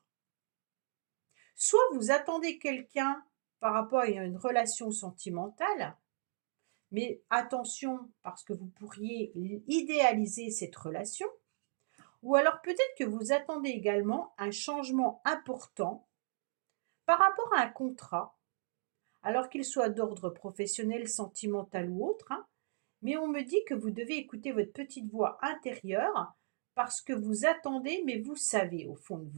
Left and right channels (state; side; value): silent; left; digital silence